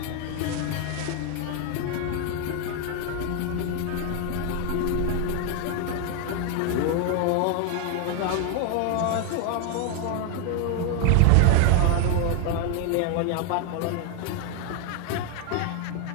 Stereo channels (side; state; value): both; different; correlation 0.01